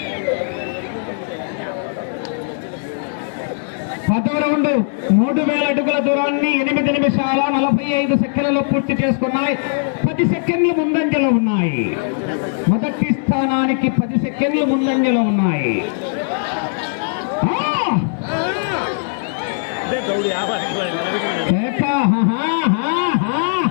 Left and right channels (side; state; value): right; silent; digital silence